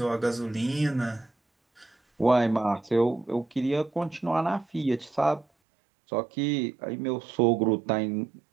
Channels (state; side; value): drops out; left; at 5.5 s